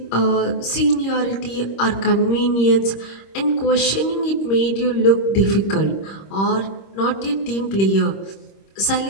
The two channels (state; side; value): late; right; 26 ms